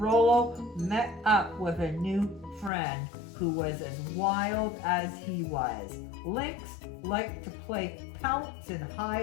met up with a new friend who was as wild as he was. Lynx liked to play pounce and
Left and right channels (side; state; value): right; drops out; at 2.7 s